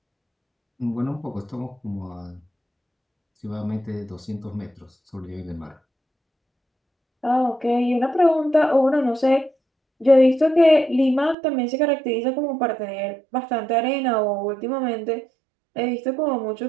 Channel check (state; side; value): drops out; left; at 11.4 s